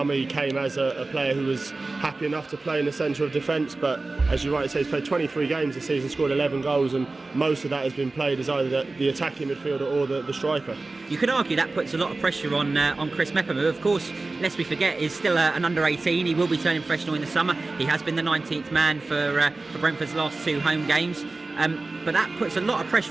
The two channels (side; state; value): left; quieter; 3.4 dB